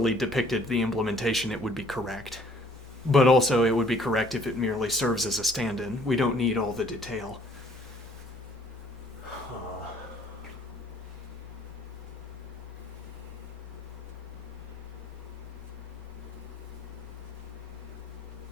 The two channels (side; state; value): both; normal; correlation 0.59